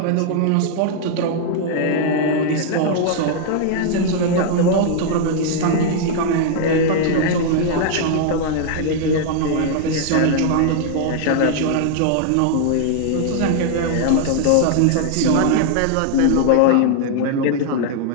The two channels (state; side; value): different; both; correlation 0.00